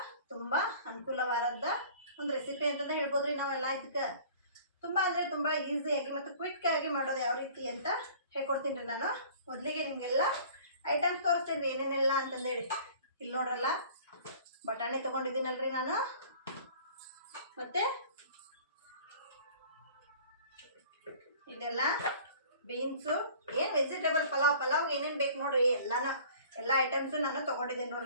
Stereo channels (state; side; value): inverted; both; correlation -0.48